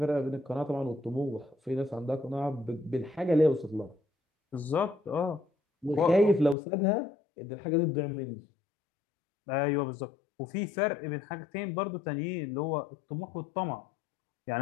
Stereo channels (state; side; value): drops out; right; at 6.6 s